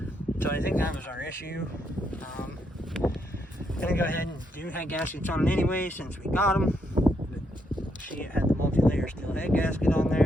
So I think that was our issue. Gonna go ahead and do head gaskets on it anyway since we got them. But see, it had the multi-layer steel head gasket on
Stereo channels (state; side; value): normal; both; correlation 0.77